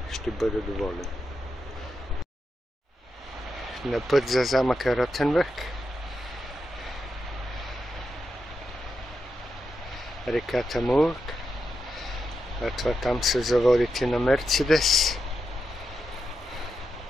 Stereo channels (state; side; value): normal; both; correlation 0.86